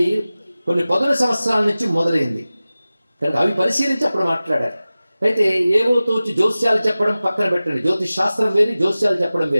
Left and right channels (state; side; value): inverted; both; correlation -0.97